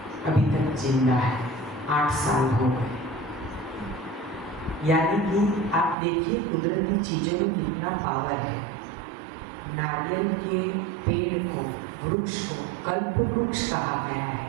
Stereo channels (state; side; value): drops out; left; at 6.0 s